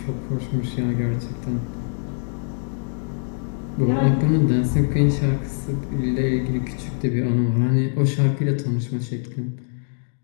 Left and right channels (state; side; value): silent; right; digital silence